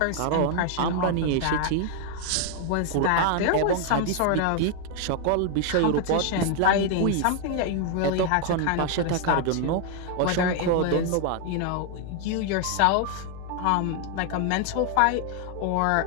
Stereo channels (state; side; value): different; both; correlation 0.00